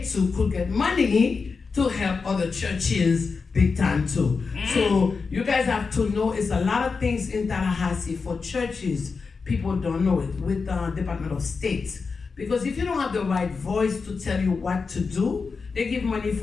too could get money to help other churches big time too. So you guys have to know it's a lot of things in Tallahassee for churches. People don't know it with the Department of State. Because if you don't have the right voice to tell you what to do, they give money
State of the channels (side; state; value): right; quieter; 4.8 dB